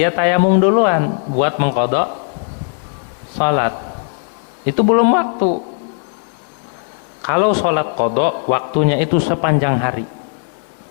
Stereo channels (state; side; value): silent; right; 68 dB below the other